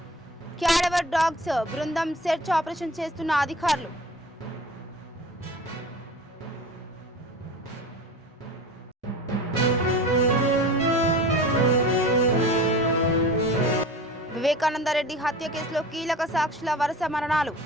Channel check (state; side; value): normal; both; correlation 0.37